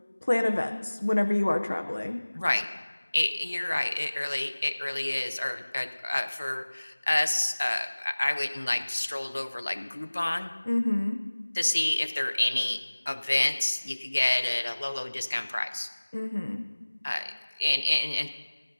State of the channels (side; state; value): both; inverted; correlation -1.00